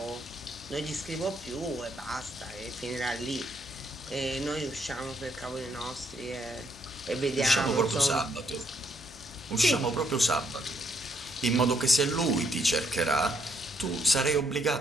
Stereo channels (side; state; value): both; normal; correlation 0.71